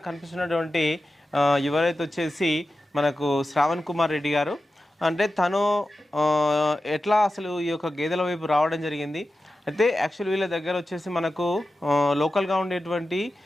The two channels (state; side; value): normal; both; correlation 0.93